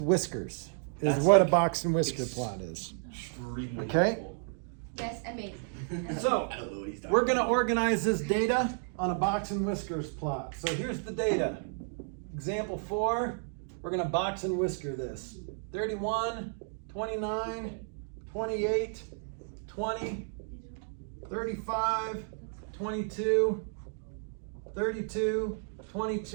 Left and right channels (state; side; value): silent; left; 56 dB below the other